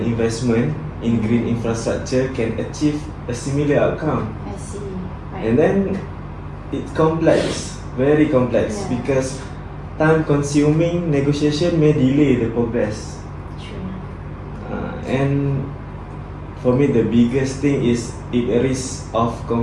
investment in green infrastructure can achieve a similar outcome. I see. Right. And then it's complex, very complex, Yeah. because time-consuming negotiation may delay the progress. True. And for me, the biggest thing is it risks of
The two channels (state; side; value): identical; both; correlation 1.00